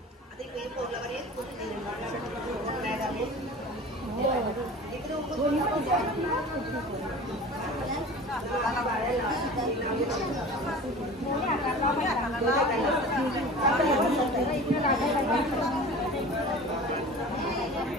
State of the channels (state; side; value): normal; both; correlation 0.38